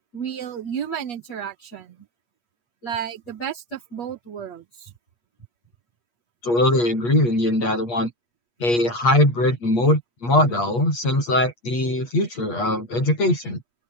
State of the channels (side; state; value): right; late; 8.4 ms